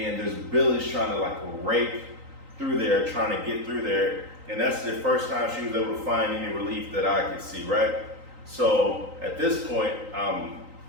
there's billies trying to like rake through there, trying to get through there. And that's the first time she was able to find any relief that I could see, right? So at this point, I'm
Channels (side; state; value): left; late; 3.9 ms